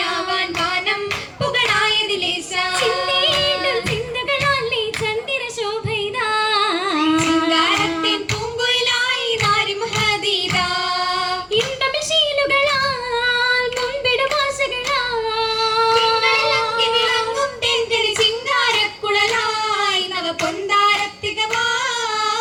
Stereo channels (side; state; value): both; identical; correlation 1.00